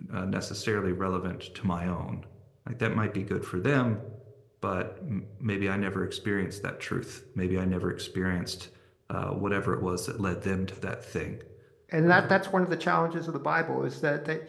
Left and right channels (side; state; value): both; identical; correlation 1.00